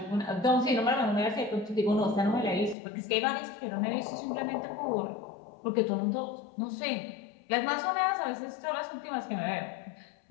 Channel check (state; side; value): drops out; right; at 2.8 s